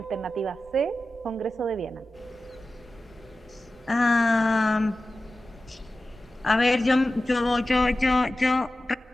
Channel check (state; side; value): normal; both; correlation 0.94